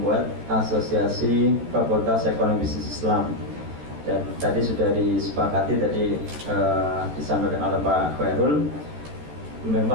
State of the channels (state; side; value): late; left; 13 ms